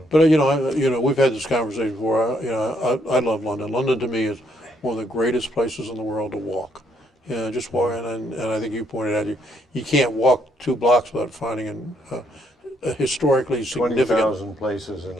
But you know, we've had this conversation before. You know, I love London. London to me is one of the greatest places in the world to walk. You know, just walk, and I think you pointed out you can't walk 2 blocks without finding a historically significant. 20,000 places in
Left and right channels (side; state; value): both; normal; correlation 0.71